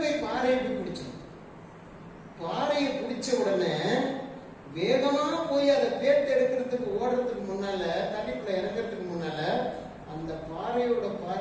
போய் பாறையை போய் பிடிச்சிடும். பாறையை பிடிச்ச உடனே வேகமா போய் அதை பேத்து எடுக்கிறதுக்கு ஓடுறதுக்கு முன்னால, தண்ணிக்குள்ள இறங்குறதுக்கு முன்னால அந்த பாறையோட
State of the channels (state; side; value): identical; both; correlation 1.00